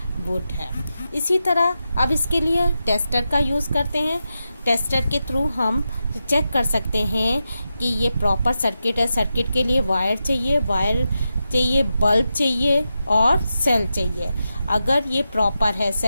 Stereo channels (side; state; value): both; inverted; correlation -0.89